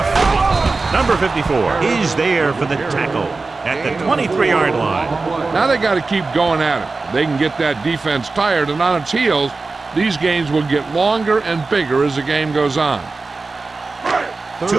Number 54 is there for the tackle at the 23-yard line. Now they got to keep going at it. They can get that defense tired and on its heels. These games will get longer and bigger as the game goes on.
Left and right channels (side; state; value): left; quieter; 3.8 dB